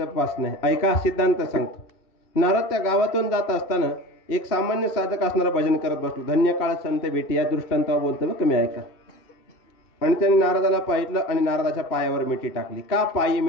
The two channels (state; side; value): late; right; 2.7 ms